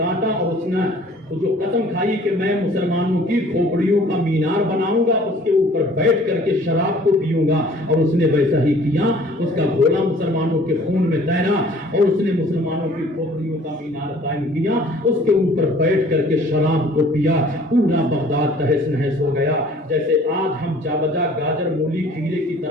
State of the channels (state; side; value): normal; both; correlation 0.53